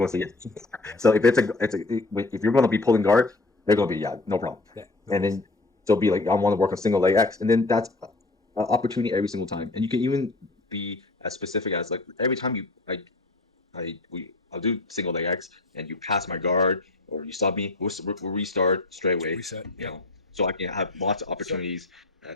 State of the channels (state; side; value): quieter; right; 3.1 dB